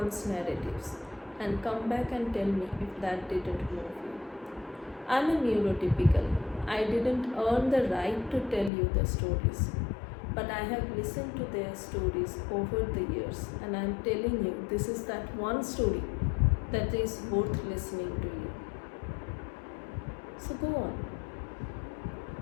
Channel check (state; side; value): drops out; right; at 8.7 s